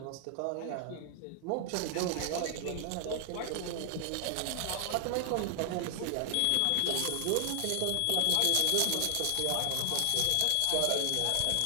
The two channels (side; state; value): both; different; correlation 0.00